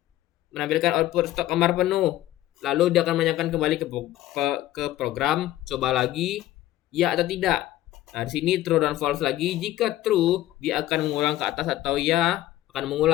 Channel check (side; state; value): right; quieter; 14.6 dB